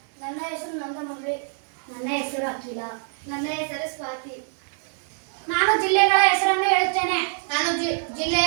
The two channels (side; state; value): left; silent; digital silence